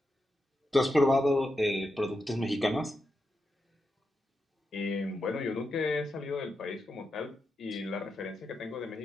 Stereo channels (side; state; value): both; normal; correlation 0.87